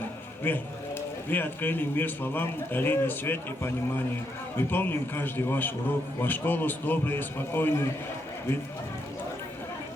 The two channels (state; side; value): normal; both; correlation 0.78